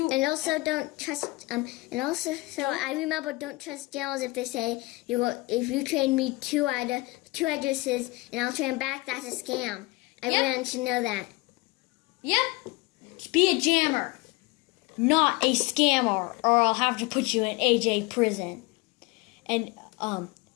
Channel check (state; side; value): quieter; right; 23.1 dB